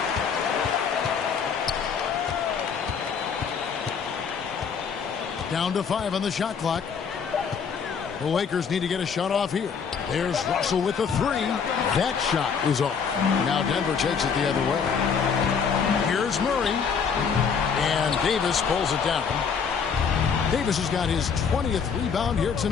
Down to 5 on the shot clock. The Lakers need to get a shot off here. There's Russell with the 3. That shot is off. Now Denver takes it the other way. Here's Murray. And Davis pulls it down. Davis has got his 20th rebound here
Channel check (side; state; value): right; quieter; 6.4 dB